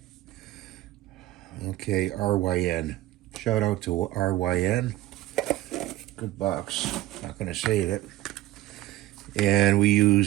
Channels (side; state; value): left; quieter; 15.6 dB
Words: Okay, RYN. Shout out to RYN. Good box. Not going to save it. And we